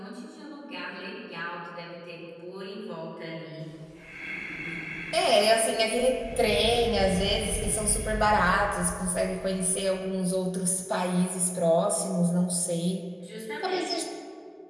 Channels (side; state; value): both; identical; correlation 1.00